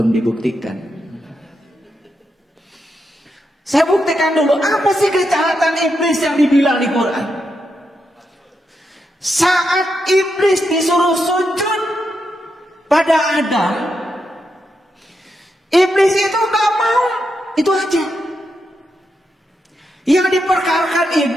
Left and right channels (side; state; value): both; normal; correlation 0.84